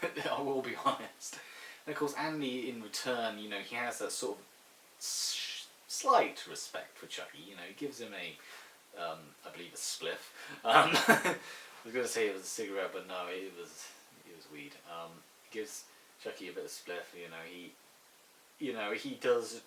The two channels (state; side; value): identical; both; correlation 1.00